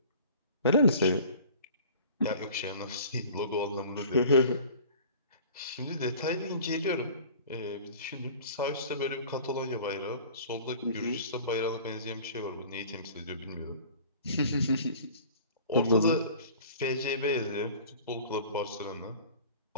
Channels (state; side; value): inverted; both; correlation -0.44